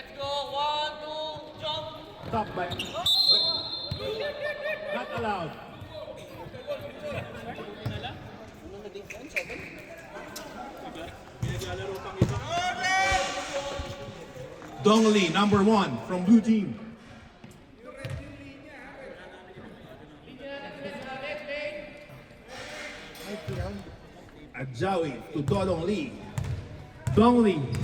go. 1, 2, jump. Stop by. Not allowed. Dongli, number 1 from blue team. Adjawi to Dodong Lee. Dongli.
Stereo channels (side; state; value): both; identical; correlation 1.00